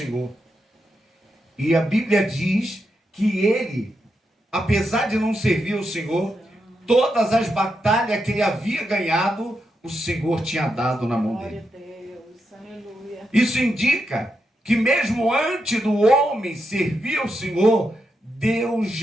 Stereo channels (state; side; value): normal; both; correlation 0.84